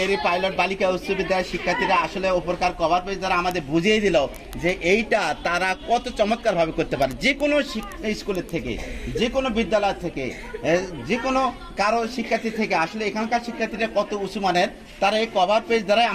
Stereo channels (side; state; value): both; identical; correlation 1.00